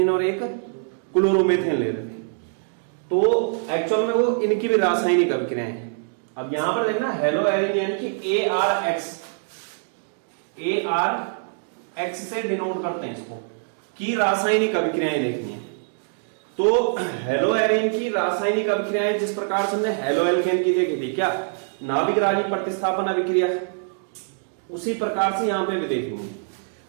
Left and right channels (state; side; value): silent; left; digital silence